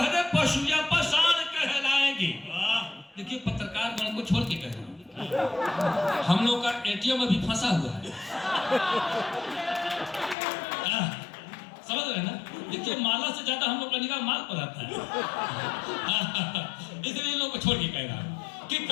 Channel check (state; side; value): drops out; right; at 10.4 s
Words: पशु या पाषाण कहलाएंगे। देखिए, पत्रकार गण को छोड़ के कह रहा हूं, हम लोग का एटीएम अभी फंसा हुआ है। समझ रहे ना? देखिए, माला से ज्यादा हम लोग का निगाह माल पर आता है। इसलिए इन लोग को छोड़ के कह रहा हूं कि